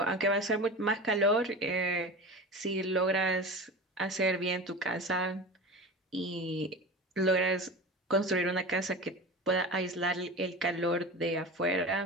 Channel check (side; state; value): both; normal; correlation 0.31